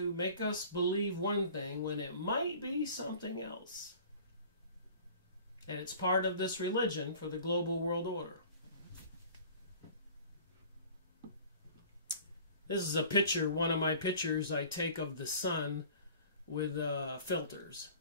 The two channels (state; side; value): inverted; both; correlation -0.46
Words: make us believe one thing when it might be something else. And it's part of this religion for the global world order. This is a picture, one of my pictures I take of the sun with filters.